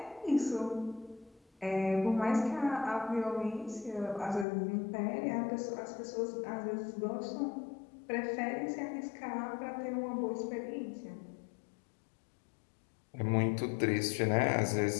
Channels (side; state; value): right; drops out; at 4.5 s